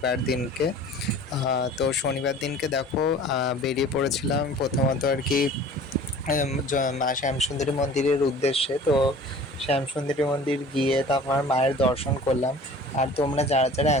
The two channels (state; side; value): normal; both; correlation 0.45